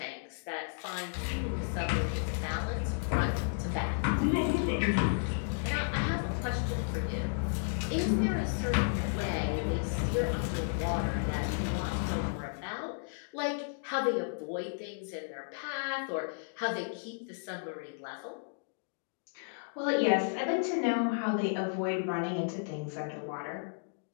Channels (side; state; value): right; silent; digital silence